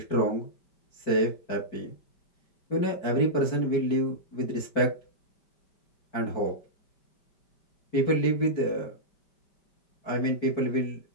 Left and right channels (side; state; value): right; late; 5.1 ms